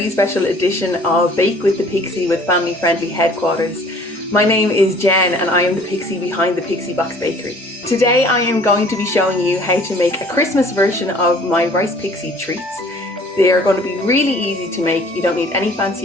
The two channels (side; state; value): both; normal; correlation 0.52